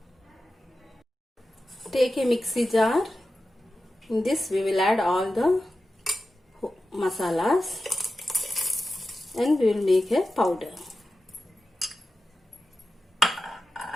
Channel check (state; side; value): normal; both; correlation 0.93